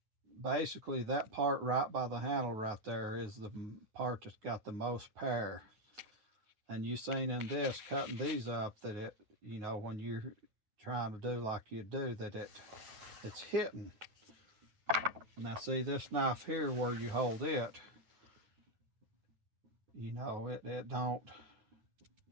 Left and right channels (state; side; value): late; left; 9.5 ms